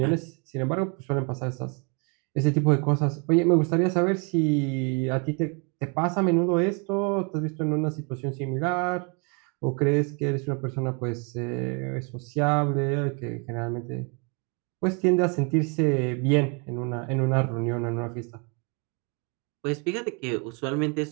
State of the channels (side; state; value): left; quieter; 34.4 dB